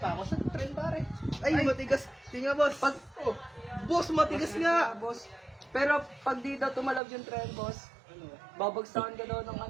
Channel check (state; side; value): drops out; left; at 7.0 s